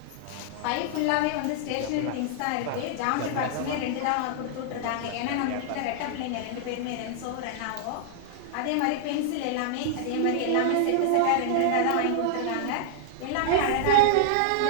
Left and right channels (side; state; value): both; different; correlation -0.01